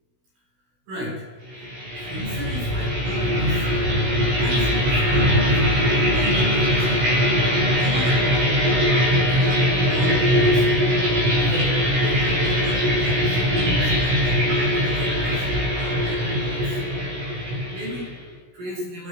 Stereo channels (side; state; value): left; late; 16 ms